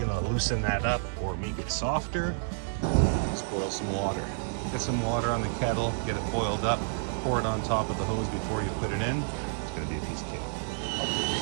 going to loosen that up or make it softer? Just boil some water. Get some water on the kettle, get it boiled up, pour it on top of the hose before you put it in. It's going to be a piece of cake.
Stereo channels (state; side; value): silent; left; digital silence